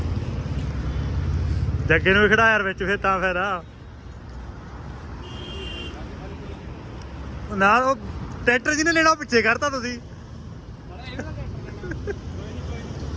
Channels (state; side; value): identical; both; correlation 1.00